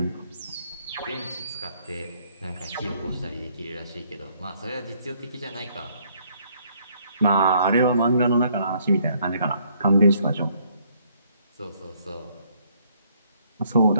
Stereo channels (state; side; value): inverted; both; correlation -0.67